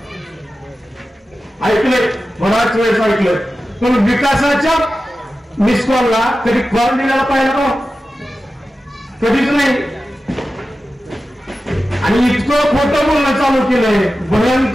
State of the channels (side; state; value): both; normal; correlation 0.93